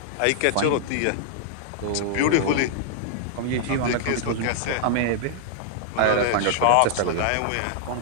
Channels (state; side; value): different; both; correlation -0.01